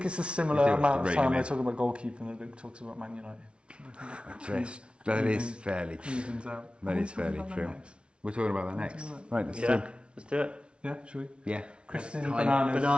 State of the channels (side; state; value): left; late; 0.058 ms